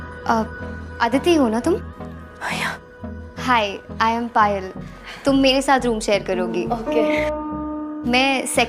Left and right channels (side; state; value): both; identical; correlation 1.00